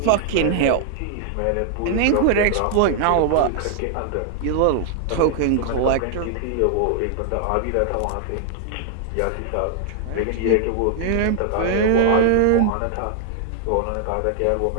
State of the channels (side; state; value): both; different; correlation -0.01